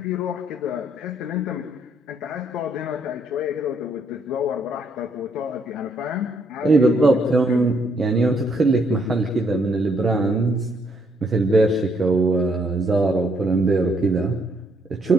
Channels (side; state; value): both; normal; correlation 0.71